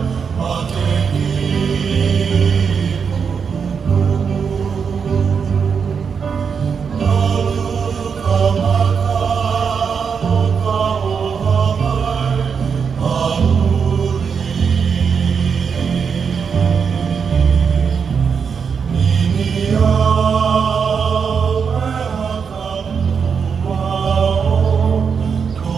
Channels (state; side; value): quieter; left; 6.3 dB